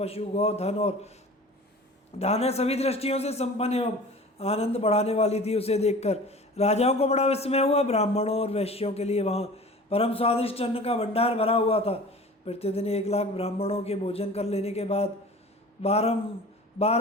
गौ, धन और दाने सभी दृष्टियों से संपन्न एवं आनंद बढ़ाने वाली थी। उसे देखकर राजाओं को बड़ा विस्मय हुआ। ब्राह्मणों और वैश्यों के लिए वहाँ परम स्वादिष्ट अन्न का भंडार भरा हुआ था। प्रतिदिन 1 लाख ब्राह्मणों के भोजन कर लेने के बाद बार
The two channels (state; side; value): normal; both; correlation 0.41